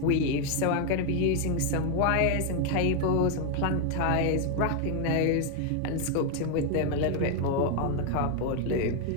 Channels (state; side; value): different; both; correlation 0.00